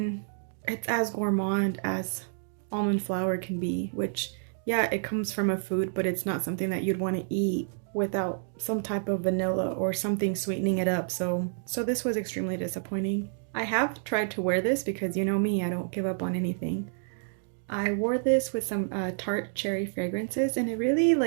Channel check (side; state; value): left; silent; digital silence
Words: it's as gourmand as almond flour can be, which yeah, it comes from a food, but it's not something that you'd want to eat without some type of vanilla or something sweetening it up. So this was extremely disappointing. I have tried to wear this because you know me, I don't give up on anything. I wore this with some tart cherry fragrances and it really